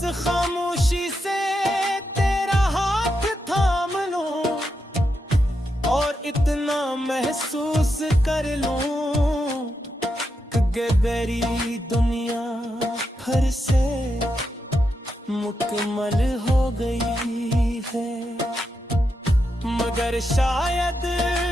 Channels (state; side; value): normal; both; correlation 0.85